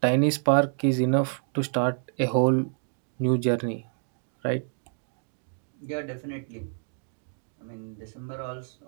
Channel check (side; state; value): left; silent; 59 dB below the other